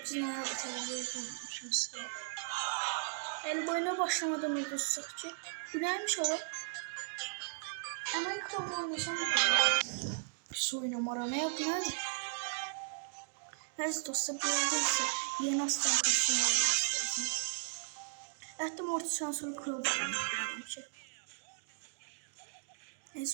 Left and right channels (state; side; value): silent; left; digital silence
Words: noyabr tədbiri olmuşum size. El boyuna başlamadan udursak ki. Bu neymiş o? Hemen krabı oynasam mı? Pis oynamara ne yap nerede? Neyse dostlar bildiyse yeni aslan kostümü almışlar. Hatta mortisden sonra krabı oynayacağım ki.